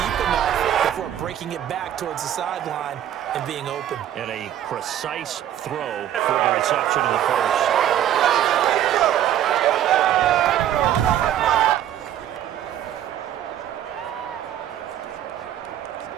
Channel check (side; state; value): left; quieter; 11.3 dB